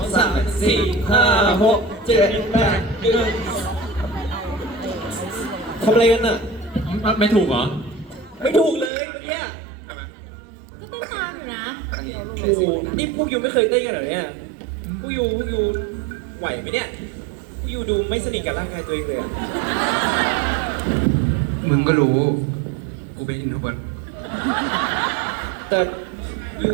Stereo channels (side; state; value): left; drops out; at 8.9 s